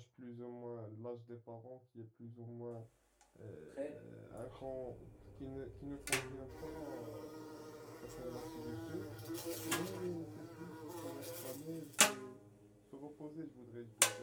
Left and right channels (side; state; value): both; identical; correlation 1.00